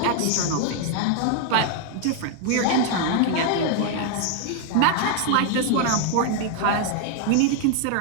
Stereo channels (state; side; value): different; both; correlation 0.00